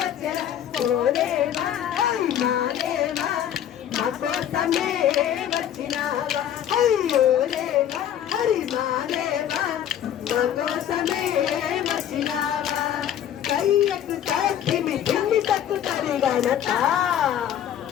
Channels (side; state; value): right; quieter; 10.3 dB